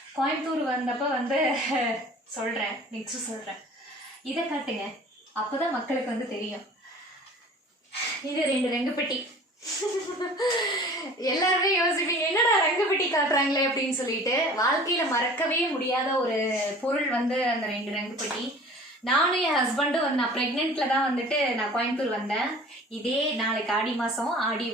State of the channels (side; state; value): both; normal; correlation 0.45